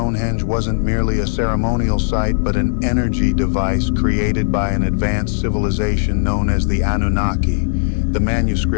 wasn't merely a ceremonial site, but an energy device created by an advanced civilization known as the Anunnaki. The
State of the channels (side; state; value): right; silent; 68 dB below the other